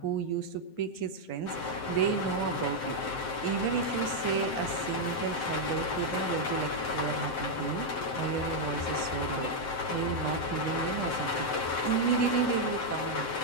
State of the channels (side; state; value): right; late; 7.7 ms